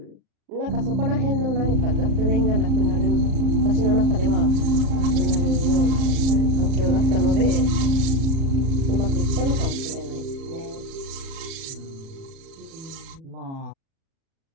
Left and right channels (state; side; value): late; left; 38 ms